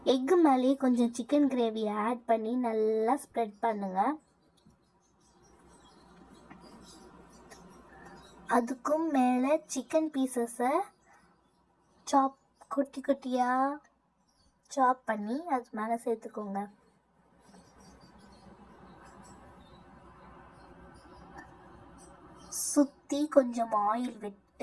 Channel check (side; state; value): both; identical; correlation 1.00